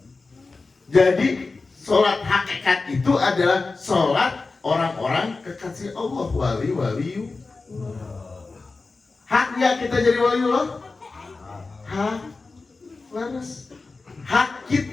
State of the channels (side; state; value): right; quieter; 3.9 dB